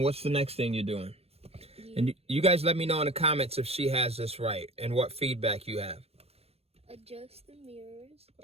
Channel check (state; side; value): late; left; 0.29 ms